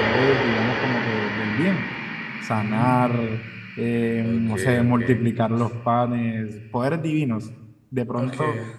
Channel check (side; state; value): both; identical; correlation 1.00